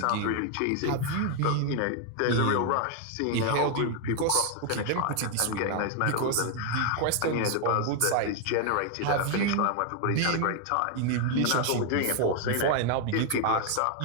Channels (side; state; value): both; different; correlation 0.00